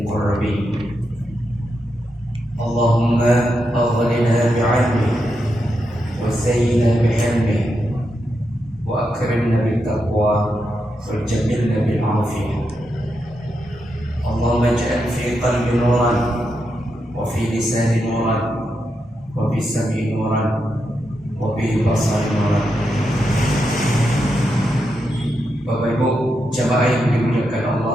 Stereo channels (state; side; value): normal; both; correlation 0.85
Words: اللهم أغننا بعلمه وزينا بحلمه وأكرمنا بالتقوى وجملنا بالعافية. اللهم اجعل في قلبي نورا وفي لساني نورا وفي سمعي نورا وفي بصري نورا. Bapak Ibu jamaah yang dimuliakan